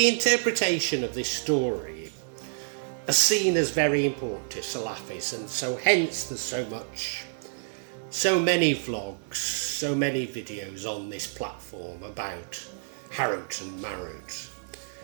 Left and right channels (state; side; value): silent; left; digital silence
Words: interpretation of this story is seen as very important to Salafis, and so hence there's so many vlogs, so many videos on this platform about Harut and Marut.